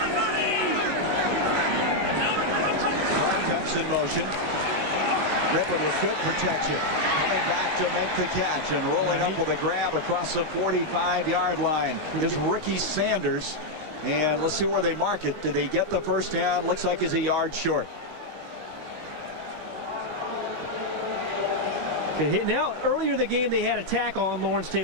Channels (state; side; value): late; left; 19 ms